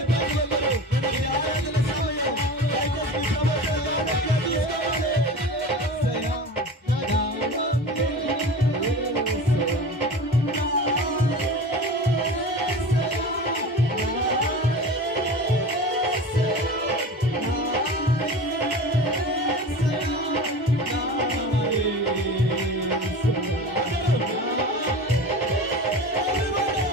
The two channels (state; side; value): normal; both; correlation 0.33